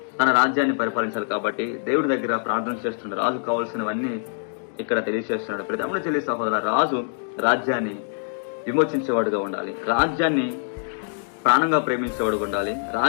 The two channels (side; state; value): right; silent; digital silence